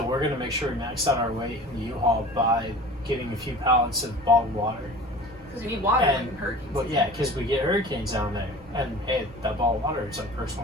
we're gonna make sure we max out our weight in the U-Haul by getting a few pallets of bottled water. Because you need water And- when hurricanes. But yeah, because we get hurricanes down there, and hey, that bottled water is like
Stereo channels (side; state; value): both; normal; correlation 0.40